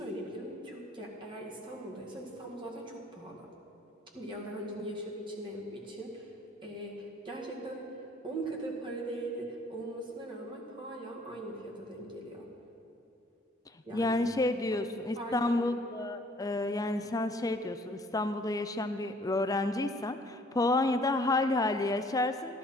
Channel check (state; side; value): normal; both; correlation 0.58